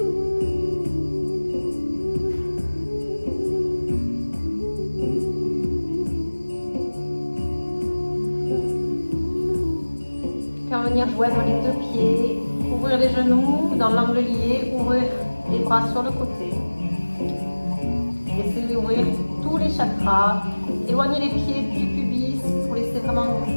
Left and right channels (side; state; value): both; inverted; correlation -1.00